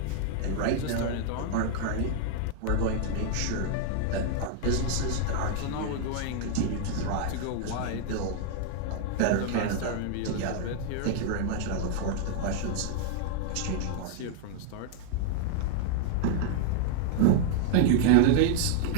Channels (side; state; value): both; different; correlation 0.00